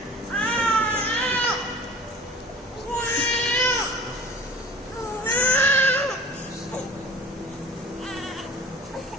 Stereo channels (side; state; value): both; normal; correlation 0.41